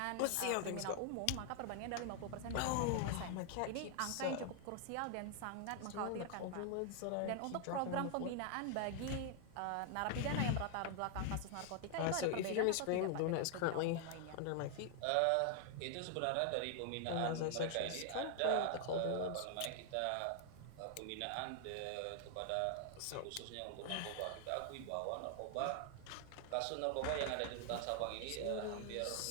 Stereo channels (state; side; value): different; both; correlation 0.00